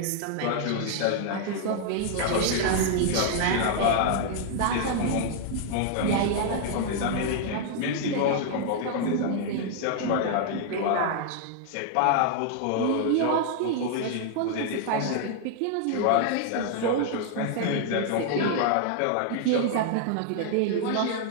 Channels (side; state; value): both; different; correlation 0.00